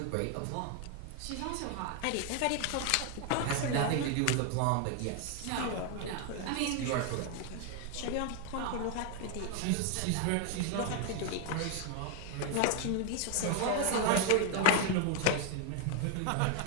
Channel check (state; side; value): different; both; correlation 0.00